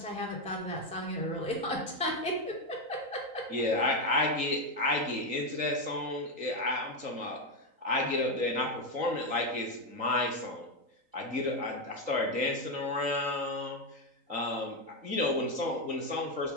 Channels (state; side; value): late; left; 3.8 ms